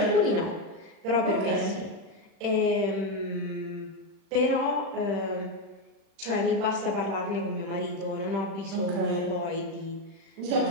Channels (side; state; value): left; late; 36 ms